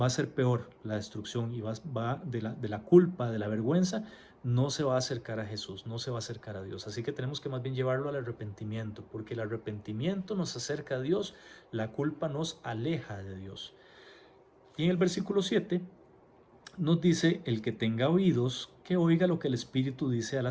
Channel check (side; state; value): both; identical; correlation 1.00